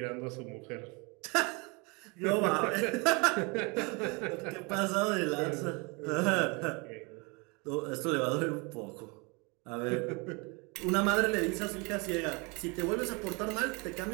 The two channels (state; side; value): quieter; left; 29.5 dB